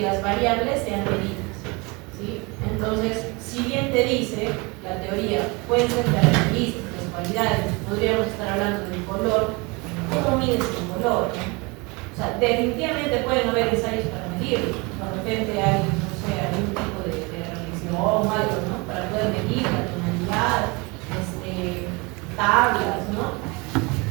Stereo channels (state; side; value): quieter; left; 27.2 dB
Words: las variables sean medidas, ¿sí? Entonces, si bien te dice la teoría, pueden ser características, cualidades, podríamos estar hablando del color, ¿cómo mides el color? O sea, definitivamente pueden haber ensayos para medirlo. De repente hay, no sé, algún tipo de reflexión o algo, ¿no? Para poder medir la tonalidad, tablas, ¿no?